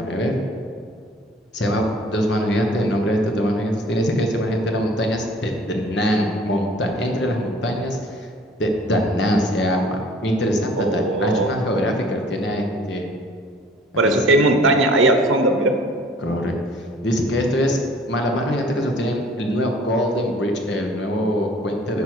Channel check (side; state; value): both; normal; correlation 0.52